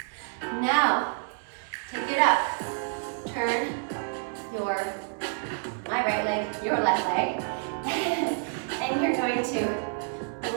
Now, take it up. Turn my right leg, your left leg. And you're going to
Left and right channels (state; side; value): silent; left; 59 dB below the other